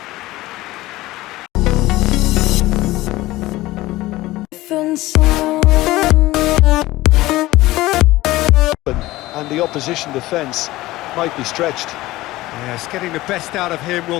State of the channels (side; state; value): right; quieter; 17.9 dB